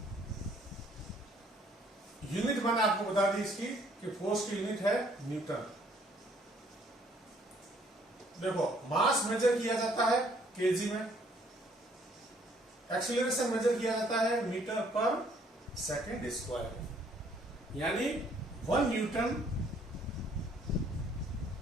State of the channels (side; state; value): both; normal; correlation 0.63